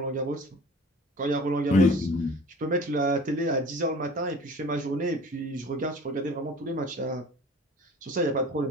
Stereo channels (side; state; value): both; normal; correlation 0.44